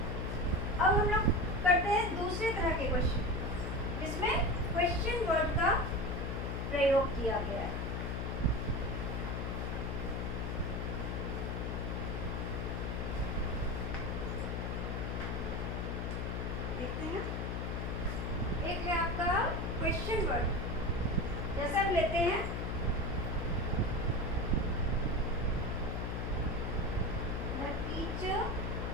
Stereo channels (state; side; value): noise; left; hum, 2 dB below the sound